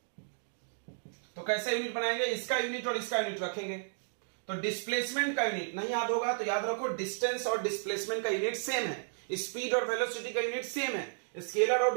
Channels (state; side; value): silent; left; digital silence